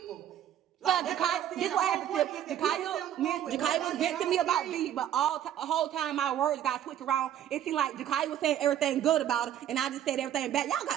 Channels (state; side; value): quieter; left; 10.8 dB